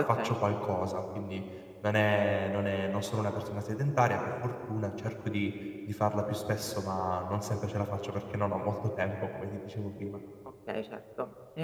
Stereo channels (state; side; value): identical; both; correlation 1.00